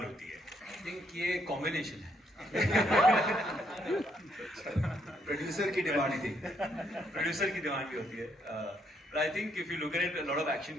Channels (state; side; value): normal; both; correlation 0.73